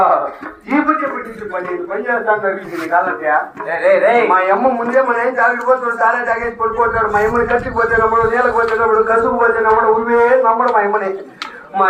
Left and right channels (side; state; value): both; identical; correlation 1.00